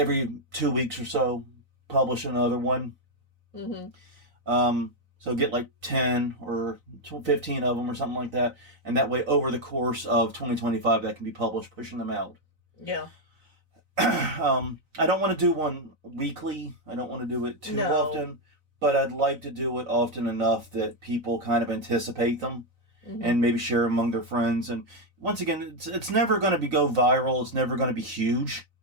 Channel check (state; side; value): late; left; 4.0 ms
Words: 2 weeks or so, publish another one. So get like 10 or 15 of them or something like that. And that way, over the course of 2025, that can be published, pushing them out. Yeah. I don't want to do one weekly. I don't want to do it too often. But I'd like to do it often enough that people kind of anticipate them. And maybe share among their friends. And once again, it's never going to go viral. It's never going to be huge.